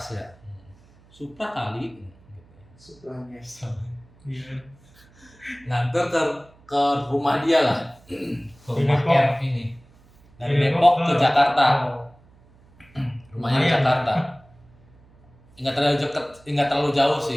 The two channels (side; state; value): right; noise; hum, 28 dB below the sound